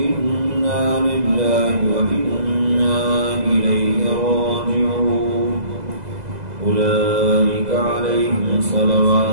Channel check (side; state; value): left; late; 2.0 ms